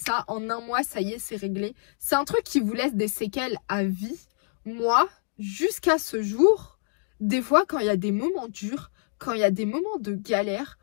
en un mois, ça y est, c'est réglé. C'est un truc qui vous laisse des séquelles à vie. Moi, jusqu'à ce jour, des fois, quand il y a des moments durs, quand il y a des moments de galère,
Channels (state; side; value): silent; right; digital silence